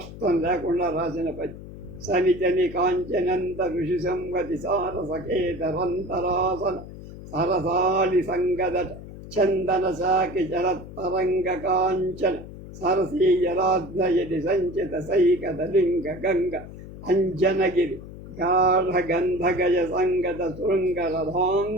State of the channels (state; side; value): noise; left; hum, 14 dB below the sound